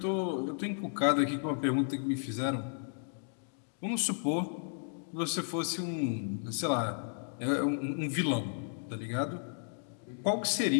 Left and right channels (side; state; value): right; silent; digital silence